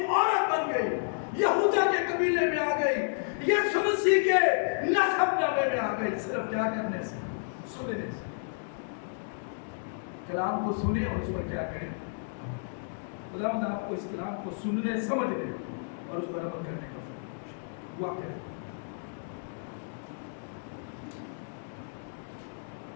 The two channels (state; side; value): silent; right; digital silence